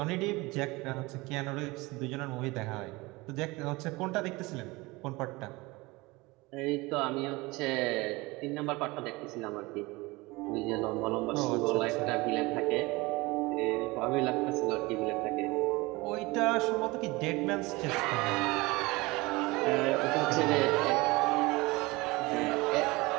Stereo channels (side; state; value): left; quieter; 22.8 dB